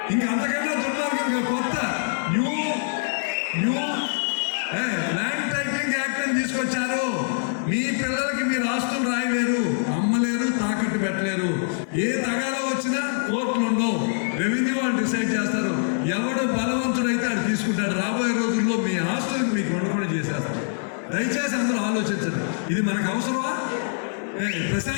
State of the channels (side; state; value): right; silent; digital silence